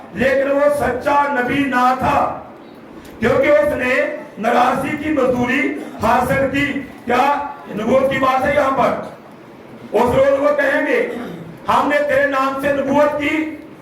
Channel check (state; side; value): identical; both; correlation 1.00